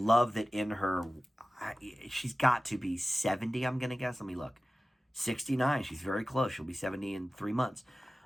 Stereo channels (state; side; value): normal; both; correlation 0.97